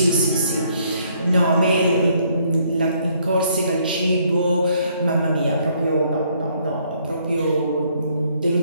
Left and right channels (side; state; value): both; inverted; correlation -0.67